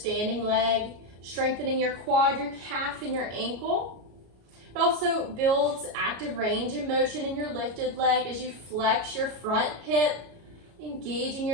leg, strengthening your quad, your calf, and your ankle. It also builds active range and motion in your lifted leg as you flex your front hip, engaging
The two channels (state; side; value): late; left; 33 ms